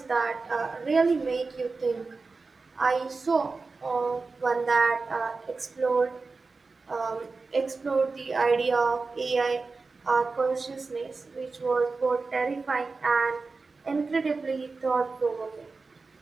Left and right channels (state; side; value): quieter; left; 4.1 dB